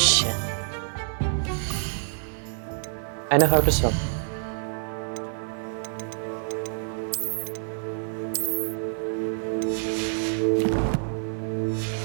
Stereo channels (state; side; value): silent; left; 56 dB below the other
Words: I know how to swim.